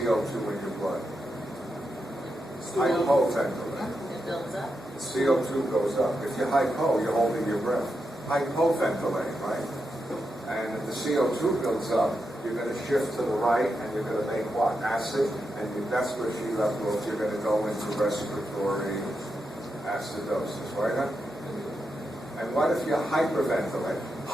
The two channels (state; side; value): normal; both; correlation 0.86